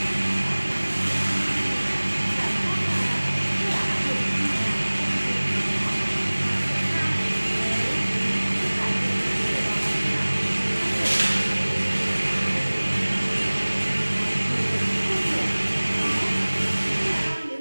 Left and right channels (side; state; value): both; inverted; correlation -1.00